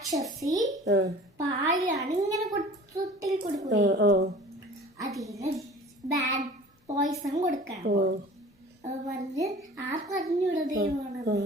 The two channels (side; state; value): both; normal; correlation 0.44